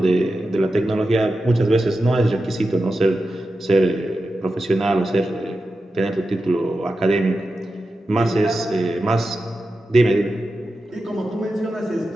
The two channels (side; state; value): both; normal; correlation 0.91